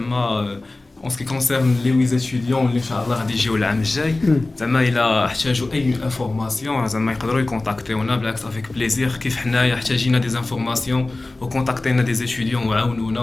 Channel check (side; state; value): right; quieter; 3.0 dB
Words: en ce qui concerne les 8 étudiants اللي ان شاء الله غادي يجيو العام الجاي, زعما الا احتاجوا اي انفورماسيون زعما يقدروا يكونتاكتيونا بالعكس افيك بليزير, كيف حنايا احتاجينا دي انفورماسيون وكونتاكتينا دي étudiants وعاونونا